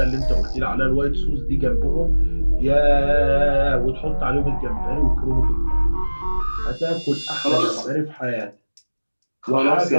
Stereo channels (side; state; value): both; inverted; correlation -1.00